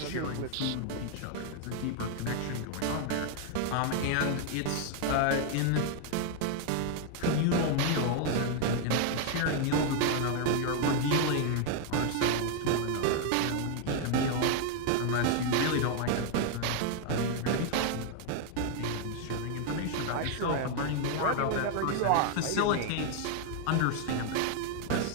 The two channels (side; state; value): both; different; correlation 0.00